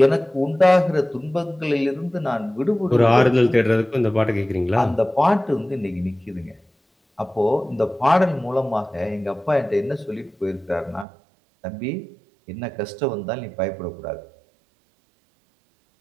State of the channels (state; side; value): drops out; left; at 11.1 s